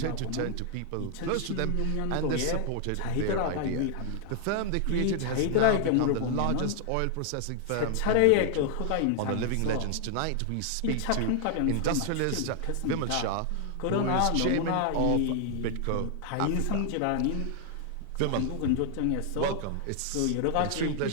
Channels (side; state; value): both; different; correlation 0.00